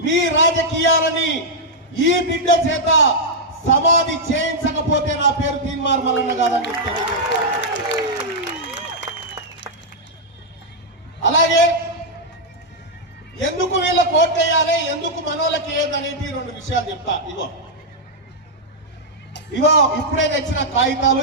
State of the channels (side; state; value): both; normal; correlation -0.05